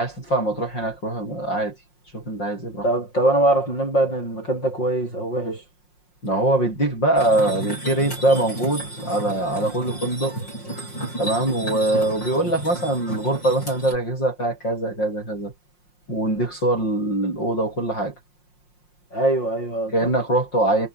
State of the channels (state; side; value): late; right; 5.6 ms